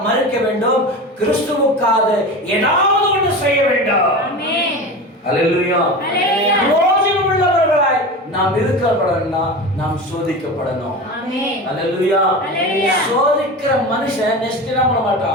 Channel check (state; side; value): normal; both; correlation 0.28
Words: மரிக்க வேண்டும், கிறிஸ்துவுக்காக ஏதாவது ஒன்று செய்ய வேண்டும். அல்லேலூயா. பிரயோஜனம் உள்ளவர்களாய் நாம் இருக்கப்படணும்னா நாம் சோதிக்கப்படணும். அல்லேலூயா. சோதிக்கிற மனுஷன் நெக்ஸ்ட் என்ன பண்ண